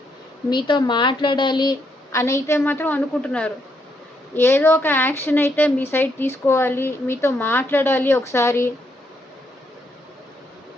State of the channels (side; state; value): both; normal; correlation 0.76